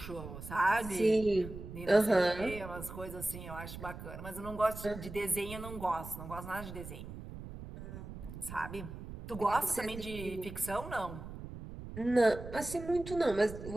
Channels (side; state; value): right; noise; rumble, 11 dB below the sound